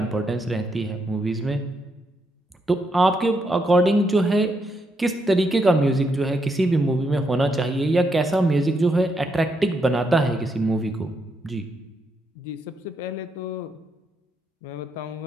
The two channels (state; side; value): normal; both; correlation 0.79